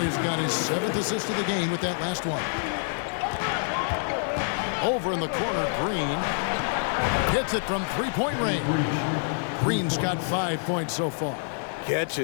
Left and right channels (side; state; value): right; silent; digital silence